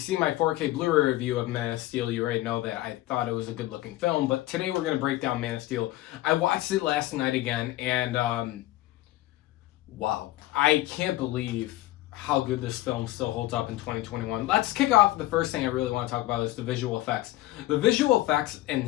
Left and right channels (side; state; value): right; quieter; 16.7 dB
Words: my 4K Blu-ray review of Man of Steel, you already know that I thought it was a good-looking film. But today we're going to break down Man of Steel. I watched it last night again, and wow. I can't believe how good this film still holds up in 2021. Let's kick off. The first thing I really want to talk about is the visual effects. The visual effects and